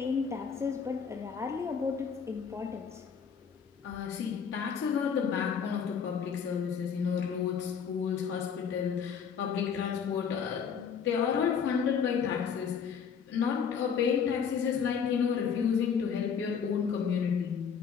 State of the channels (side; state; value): right; quieter; 6.9 dB